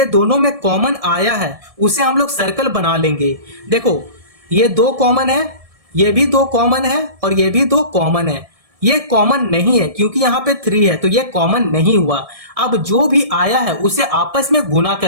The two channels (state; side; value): late; left; 1.7 ms